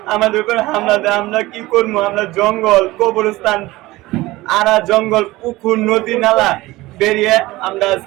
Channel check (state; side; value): quieter; left; 19.2 dB